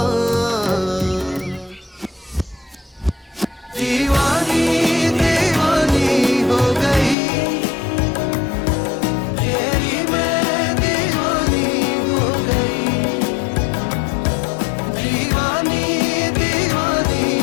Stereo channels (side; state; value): right; drops out; at 7.2 s